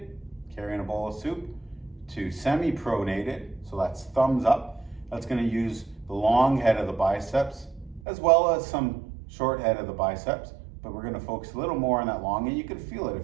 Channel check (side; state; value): left; drops out; at 8.0 s